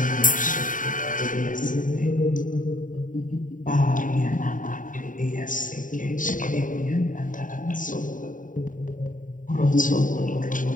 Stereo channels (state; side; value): late; right; 0.38 ms